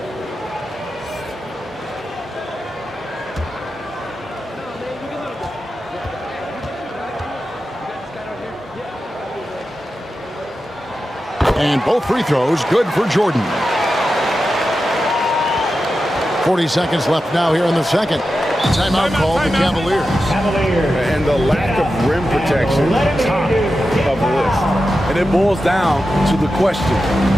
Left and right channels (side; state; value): both; normal; correlation 0.91